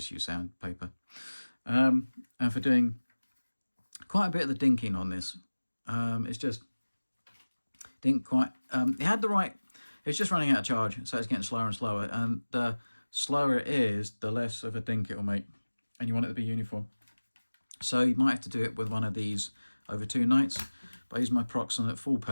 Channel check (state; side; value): inverted; both; correlation -1.00